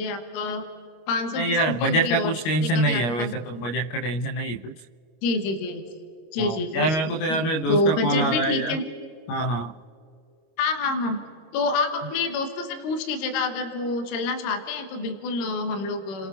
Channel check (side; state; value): right; late; 25 ms